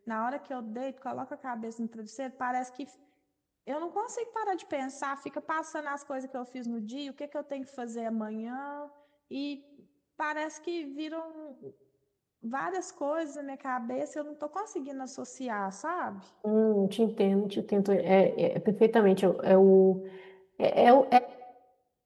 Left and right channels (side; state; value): both; identical; correlation 1.00